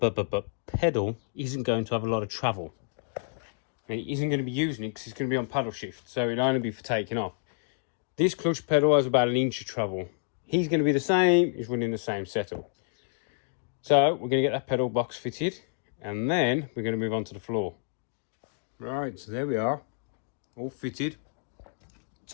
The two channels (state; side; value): silent; right; digital silence